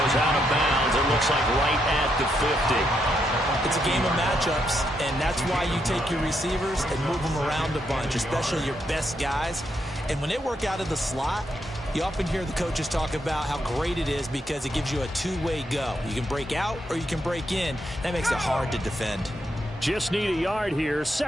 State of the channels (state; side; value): normal; both; correlation 0.79